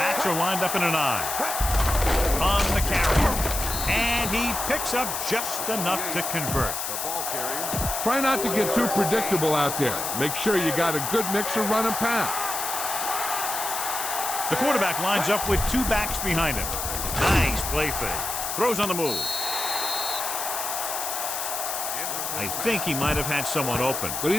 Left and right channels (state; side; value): noise; left; hiss, 3 dB below the sound